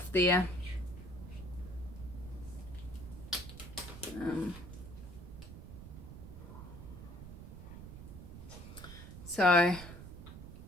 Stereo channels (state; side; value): noise; right; rumble, 12 dB below the sound